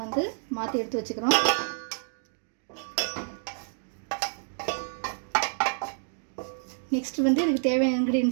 மாற்றி எடுத்து வச்சுக்கிறோம். நெக்ஸ்ட் வந்து இதுக்கு தேவையான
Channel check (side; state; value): left; silent; digital silence